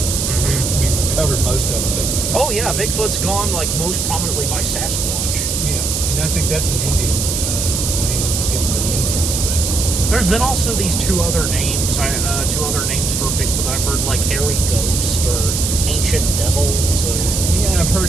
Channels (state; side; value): noise; right; hiss, 1 dB below the sound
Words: We've covered most of them, but... Oh, yeah, Bigfoot's gone, like, most prominently by Sasquatch. Yeah, and I think that's an Indian name that was given by the Indians, but... There's been also these two other names for Bigfoot that I've heard, like Hairy Ghost or Ancient Devil. So. Yeah, I